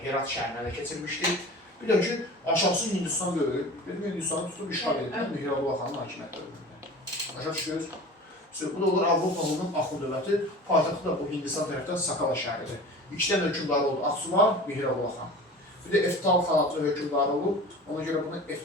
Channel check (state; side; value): normal; both; correlation 0.38